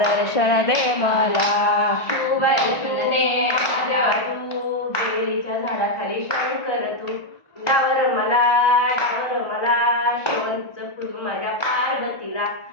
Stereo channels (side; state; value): right; late; 1.4 ms